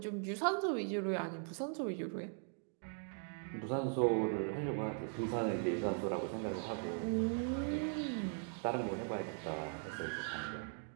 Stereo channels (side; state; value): left; silent; 51 dB below the other